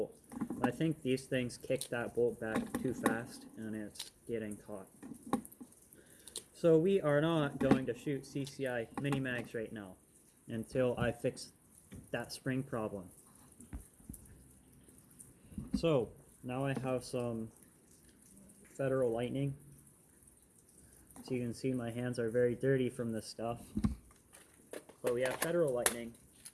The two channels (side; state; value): both; identical; correlation 1.00